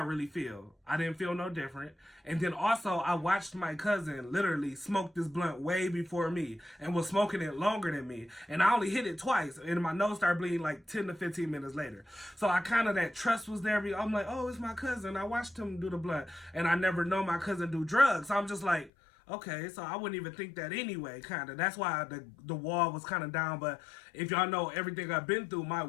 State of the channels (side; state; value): right; drops out; at 18.9 s